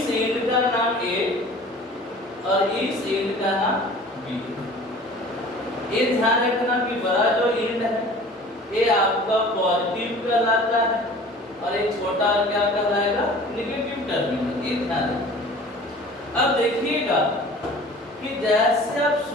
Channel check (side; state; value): both; normal; correlation 0.45